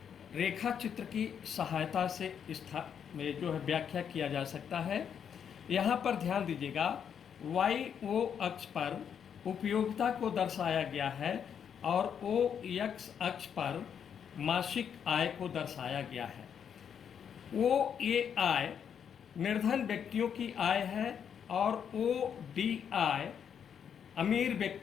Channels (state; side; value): quieter; right; 7.9 dB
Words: रेखा चित्र की सहायता से व्याख्या किया जा सकता है। यहाँ पर ध्यान दीजिएगा, YO अक्ष पर उपयोगिता को दर्शाया गया है और OX अक्ष पर मासिक आय को दर्शाया गया है। OAI निर्धन व्यक्तियों की आय है और ODI अमीर